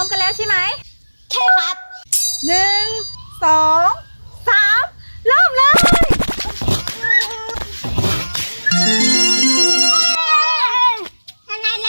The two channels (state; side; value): inverted; both; correlation -1.00